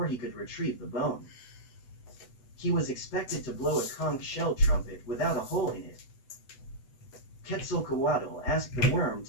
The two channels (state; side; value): late; right; 8.0 ms